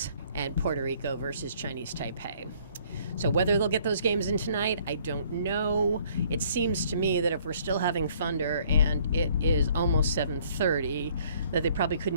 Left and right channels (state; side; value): inverted; both; correlation -0.61